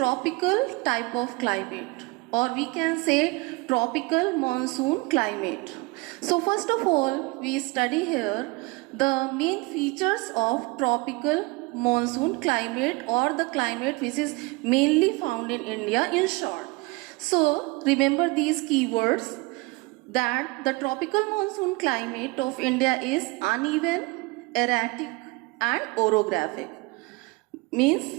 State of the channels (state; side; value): quieter; left; 25.6 dB